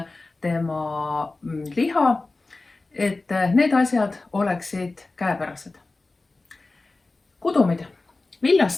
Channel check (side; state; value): right; quieter; 3.3 dB